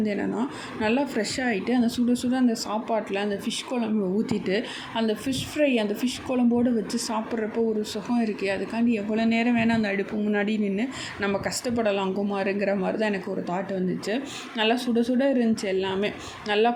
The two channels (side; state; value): both; identical; correlation 1.00